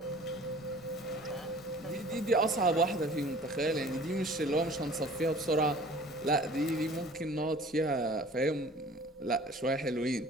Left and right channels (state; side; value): normal; both; correlation 0.47